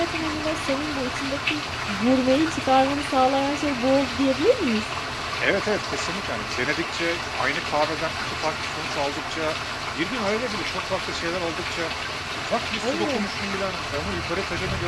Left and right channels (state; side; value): identical; both; correlation 1.00